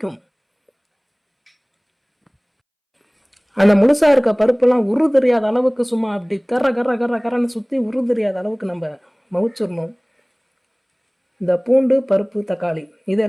அந்த முழுசாக இருக்க பருப்பெல்லாம் உரு தெரியாத அளவுக்கு சும்மா அப்படி கர்ற கர்ற கர்ற கரன்னு சுற்றி உரு தெரியாத அளவுக்கு நம்ம மவிச்சிடணும். இந்த பூண்டு, பருப்பு, தக்காளி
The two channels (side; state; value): both; identical; correlation 1.00